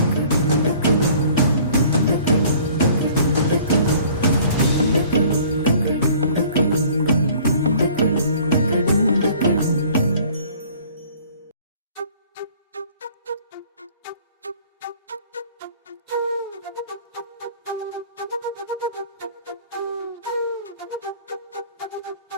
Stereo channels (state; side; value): inverted; both; correlation -0.52